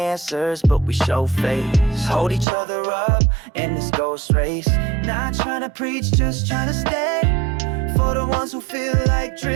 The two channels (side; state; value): left; drops out; at 2.5 s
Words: but we show face. Hold each other up in this ghost race. Not trying to preach, just trying to stay. For the ones who feel like